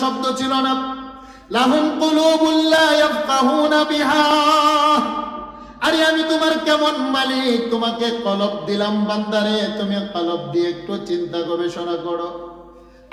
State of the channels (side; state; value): both; identical; correlation 1.00